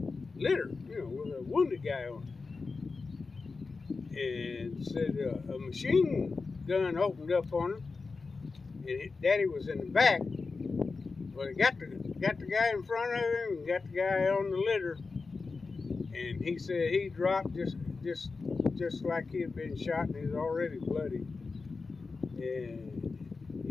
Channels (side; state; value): right; quieter; 4.3 dB